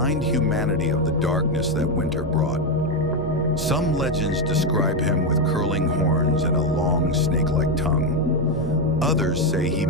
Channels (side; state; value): both; normal; correlation 0.08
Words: humanity of the darkness that winter brought. Some legends describe him with curling horns and a long snake-like tongue. Others say he